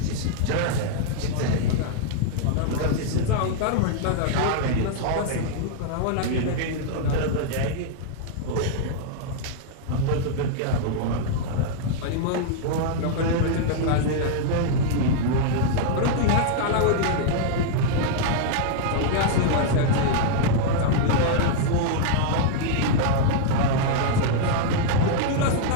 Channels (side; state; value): both; different; correlation -0.01